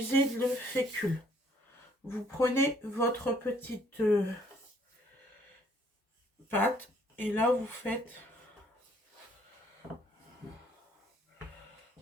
de fécule. Vous prenez votre petite pâte et là,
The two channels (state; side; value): normal; both; correlation 0.63